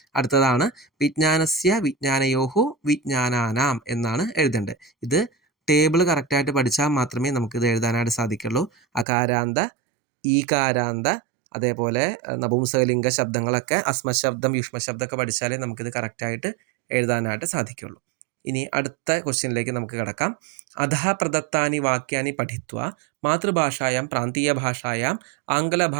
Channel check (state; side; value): drops out; left; at 9.1 s